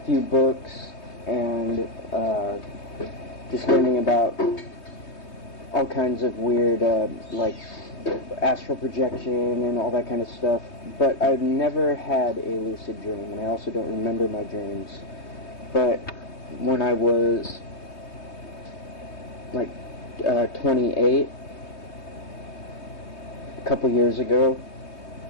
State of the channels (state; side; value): late; right; 3.2 ms